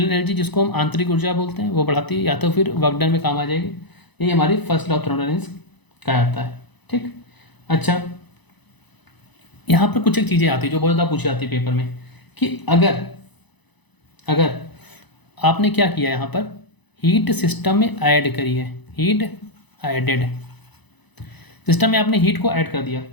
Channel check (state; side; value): late; right; 1.0 ms